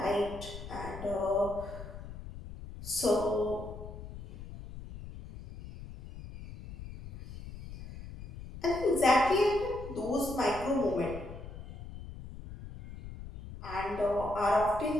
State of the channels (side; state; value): left; noise; rumble, 12 dB below the sound